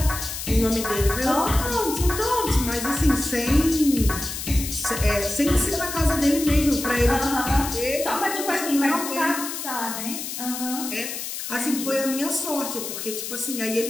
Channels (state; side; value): noise; left; hiss, 6 dB below the sound